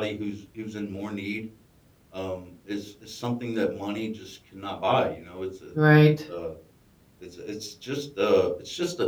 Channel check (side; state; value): both; identical; correlation 1.00